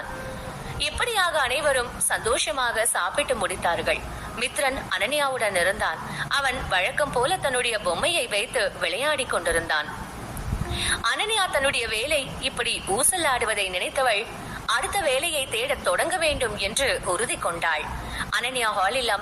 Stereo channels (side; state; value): both; identical; correlation 1.00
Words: இப்படியாக அனைவரும் சந்தோஷமாக சாப்பிட்டு முடித்தார்கள். மித்ரன் அனன்யாவுடன் இருந்தான். அவன் வழக்கம் போல தன்னுடைய பொம்மையை வைத்து விளையாடி கொண்டிருந்தான். அனன்யா தன்னுடைய வேலை இப்படி ஊசலாடுவதை நினைத்தவள் அடுத்த வேலையை தேட தொடங்க வேண்டும் என்று உறுதி கொண்டாள். அனன்யா ஹாலில்